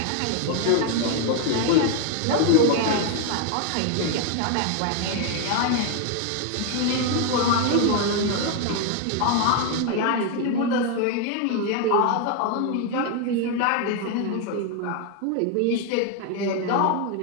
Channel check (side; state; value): both; different; correlation 0.01